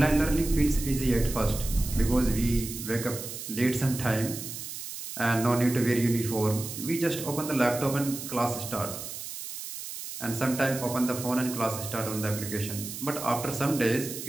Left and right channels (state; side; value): noise; right; hiss, 9 dB below the sound